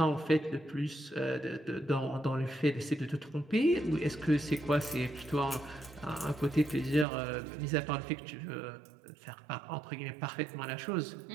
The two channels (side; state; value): left; drops out; at 7.1 s